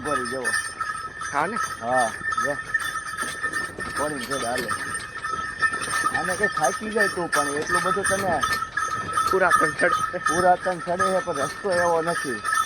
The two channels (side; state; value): left; noise; hum, 28 dB below the sound